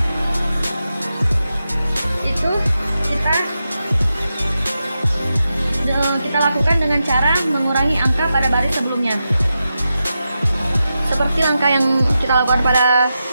Itu kita lakukan dengan cara mengurangi angka pada baris sebelumnya. Seperti langkah yang kita lakukan pada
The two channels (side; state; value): both; inverted; correlation -0.89